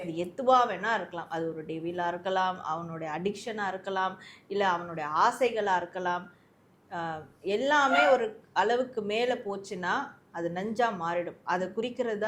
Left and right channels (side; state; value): both; identical; correlation 1.00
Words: அது எதுவாக வேணா இருக்கலாம். அது ஒரு டெவிலாக இருக்கலாம், அவனுடைய அடிக்ஷனாக இருக்கலாம், இல்லை அவனுடைய ஆசைகளாக இருக்கலாம். எல்லாமே ஒரு அளவுக்கு மேலே போச்சுன்னா அது நஞ்சாக மாறிடும். அதை குறிக்கிறது